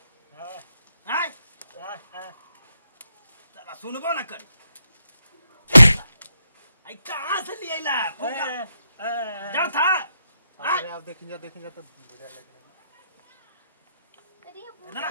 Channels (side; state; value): both; inverted; correlation -0.83